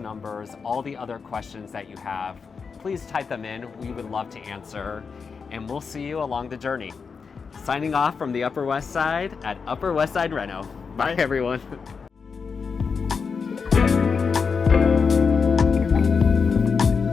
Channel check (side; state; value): right; quieter; 5.5 dB